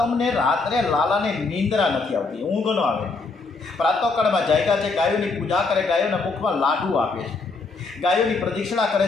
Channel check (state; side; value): quieter; right; 3.9 dB